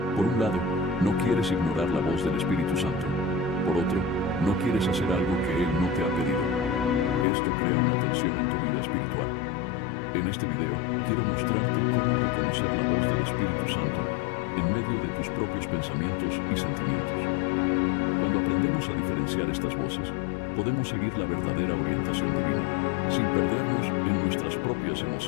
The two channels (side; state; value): right; drops out; at 7.2 s